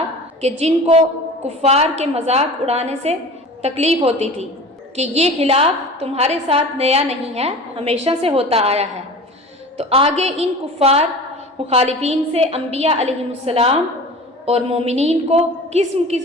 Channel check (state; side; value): normal; both; correlation 0.38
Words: کہ جن کو کفار کے مذاق اڑانے سے تکلیف ہوتی تھی کہ یہ خلاف تمہارے ساتھ نیا نہیں ہے، ہمیشہ سے ہوتا آیا ہے۔ تو آگے ان کفار مخالفین سے انبیاء علیہم السلام اور مومنین کو قسم